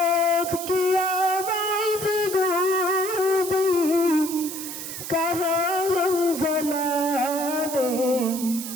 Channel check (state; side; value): noise; right; hiss, 8 dB below the sound